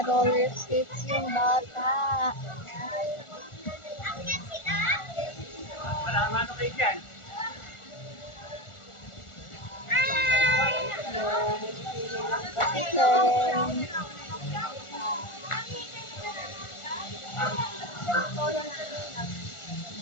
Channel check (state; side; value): late; right; 1.4 ms